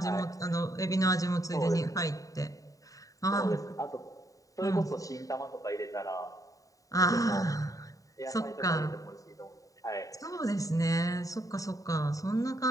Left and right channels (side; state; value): right; late; 0.16 ms